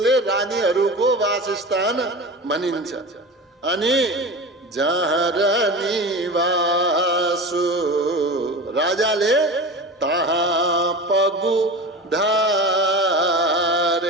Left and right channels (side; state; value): both; normal; correlation 0.30